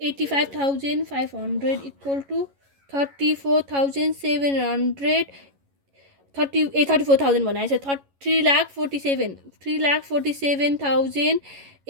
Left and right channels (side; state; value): left; late; 11 ms